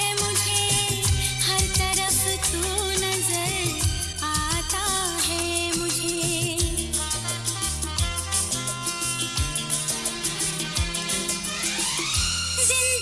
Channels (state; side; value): identical; both; correlation 1.00